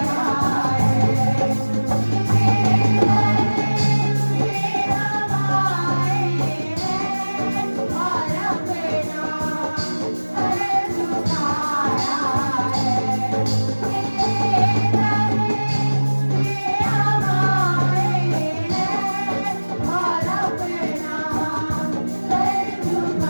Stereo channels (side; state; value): both; inverted; correlation -1.00